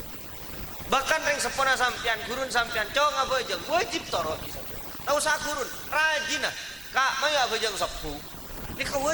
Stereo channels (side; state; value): right; noise; hiss, 20 dB below the sound